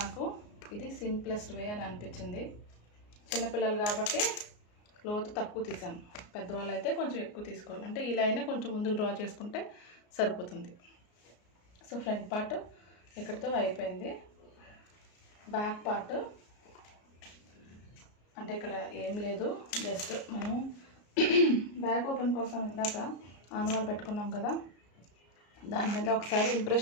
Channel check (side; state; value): right; late; 33 ms